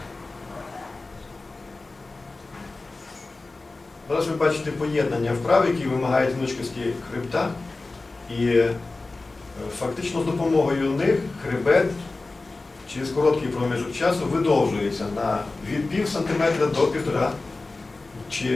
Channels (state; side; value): quieter; right; 3.4 dB